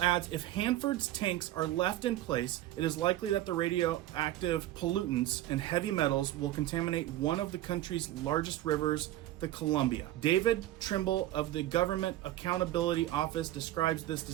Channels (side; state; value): left; quieter; 14.4 dB